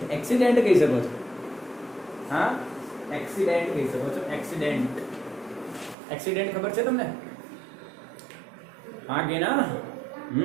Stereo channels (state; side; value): drops out; left; at 6.0 s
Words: કહી શકો છો. હા, એક્સિડન્ટ કહી શકો છો. એક્સિડન્ટ ખબર છે તમને? હા કે ના?